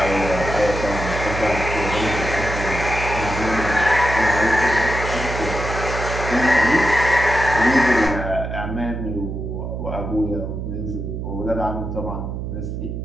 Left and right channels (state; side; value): noise; right; hum, 5 dB below the sound